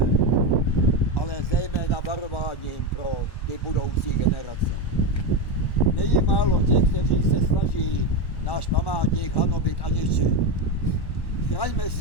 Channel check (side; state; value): right; late; 1.1 ms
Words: ale zejména varováním pro ty budoucí generace. Není málo těch, kteří se snaží náš památník hanobit a ničit. Chraňme